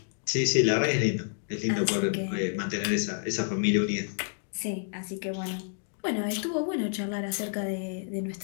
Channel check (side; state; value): right; silent; digital silence